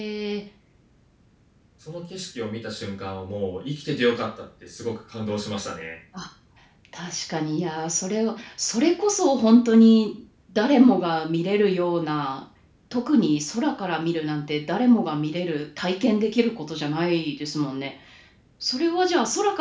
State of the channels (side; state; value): both; identical; correlation 1.00